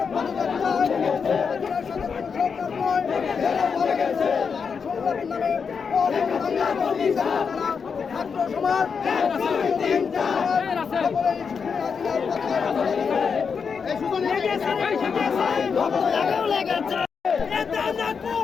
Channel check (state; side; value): quieter; right; 5.9 dB